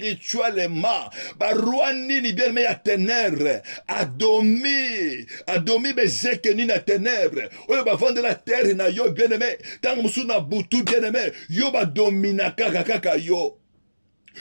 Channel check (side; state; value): both; inverted; correlation -1.00